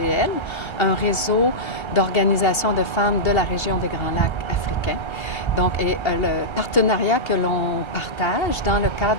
un réseau d'organisations de femmes de la région des Grands Lacs africains. Donc, le partenariat que l'on partage dans le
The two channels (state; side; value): late; right; 1.3 ms